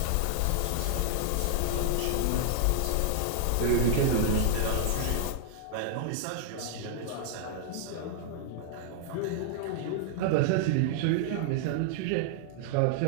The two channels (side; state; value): both; different; correlation 0.00